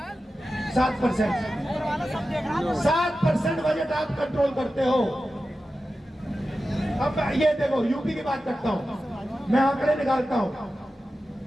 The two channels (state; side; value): normal; both; correlation 0.93